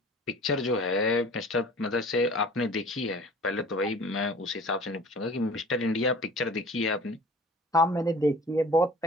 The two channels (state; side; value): normal; both; correlation 0.45